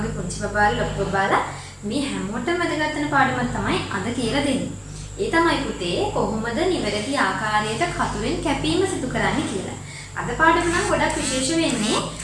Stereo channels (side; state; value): both; identical; correlation 1.00